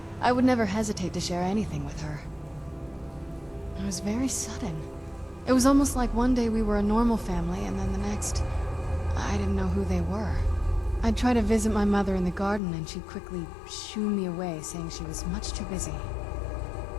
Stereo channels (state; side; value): drops out; right; at 12.6 s